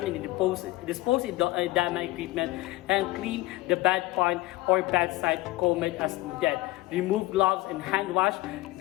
and dispose edema equipment and clean the bedpan or bedside comb as needed. Remove gloves and hand wash.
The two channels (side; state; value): right; quieter; 18.9 dB